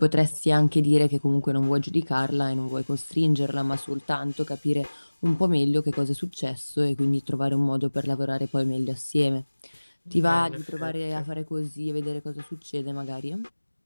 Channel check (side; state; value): both; inverted; correlation -1.00